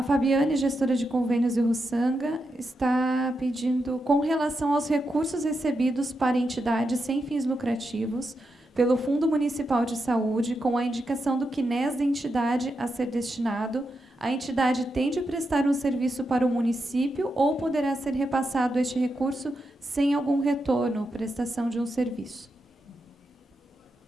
Fabiane, gestora de convênios de Russanga, está pedindo, com relação aos recursos recebidos para entidades sem fins lucrativos, pelo Fundo Municipal de Saúde, com a indicação do CNES da entidade a ser destinado, a entidade tem de prestar um serviço para o município ou poderá ser repassado este recurso sem algum retorno, prestação de um serviço?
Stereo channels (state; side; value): normal; both; correlation 0.86